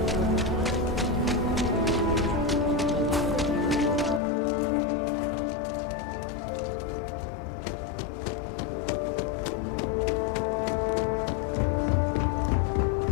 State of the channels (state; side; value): drops out; right; at 4.2 s